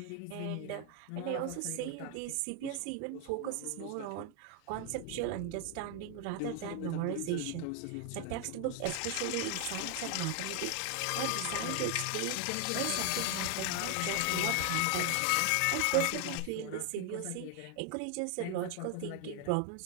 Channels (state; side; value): different; both; correlation 0.01